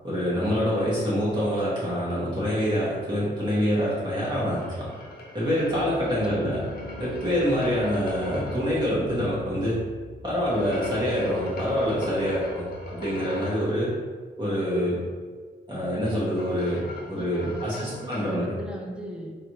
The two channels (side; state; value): both; normal; correlation 0.64